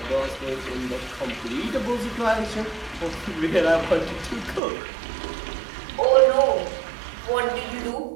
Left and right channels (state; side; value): drops out; left; at 4.6 s